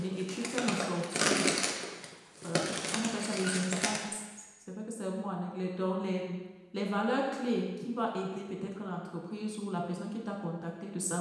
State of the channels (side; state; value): both; identical; correlation 1.00